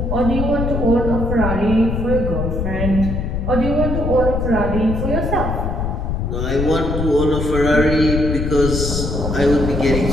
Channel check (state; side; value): noise; left; rumble, 2 dB below the sound